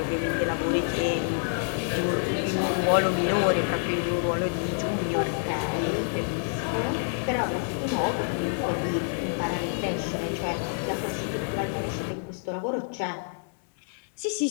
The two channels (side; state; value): right; silent; 60 dB below the other